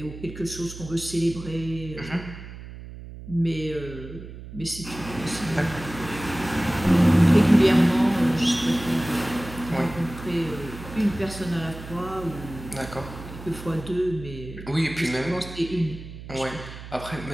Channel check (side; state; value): right; noise; hum, 13 dB below the sound